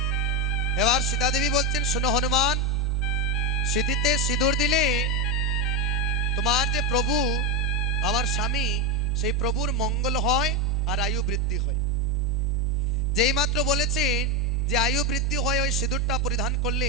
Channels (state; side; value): normal; both; correlation 0.10